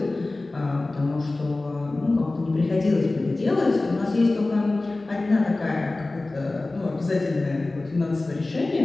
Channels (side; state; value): right; quieter; 3.1 dB